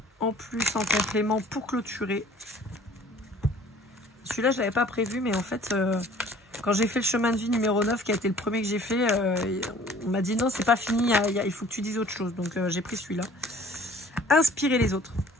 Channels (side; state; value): both; normal; correlation 0.52